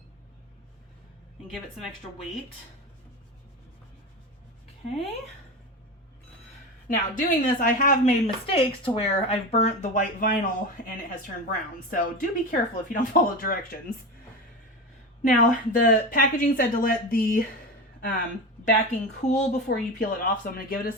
and give it some extra weight. Okay. Now, doing this, I have made mistakes to where I've burnt the white vinyl and it has turned brown. So do be careful if you don't follow directions. Now, the packaging said to let the backing cool before you peel it off, so I'm going to give it a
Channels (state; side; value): normal; both; correlation 0.23